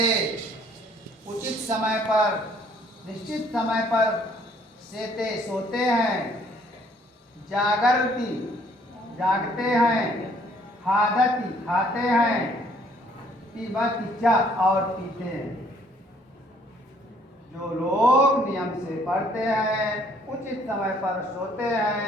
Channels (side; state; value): both; normal; correlation 0.62